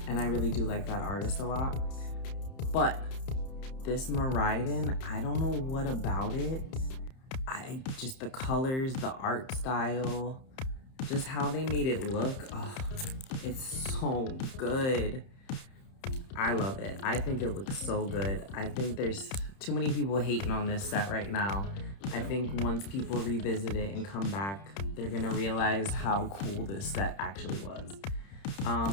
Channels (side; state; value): right; late; 31 ms